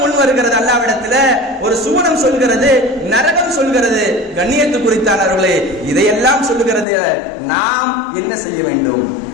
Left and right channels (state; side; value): drops out; right; at 6.9 s